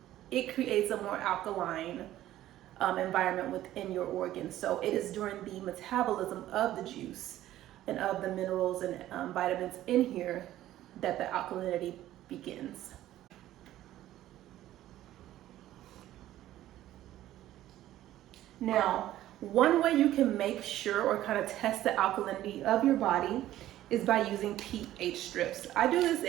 it creates a more alkaline environment within your organs. So it is during the metabolism of the juice and of the minerals and vitamins in here that the alkalinity begins. Now, one way you can make sure or kind of test the alkalinity of your body is by using pH strips. I do this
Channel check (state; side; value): quieter; left; 13.8 dB